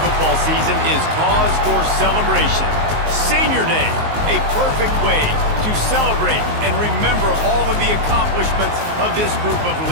season is cause for celebration. Senior Day, a perfect way to celebrate and remember all of the accomplishments of this group of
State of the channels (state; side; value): late; left; 19 ms